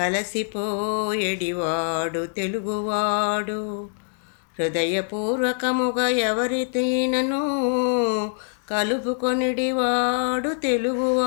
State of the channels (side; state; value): right; silent; digital silence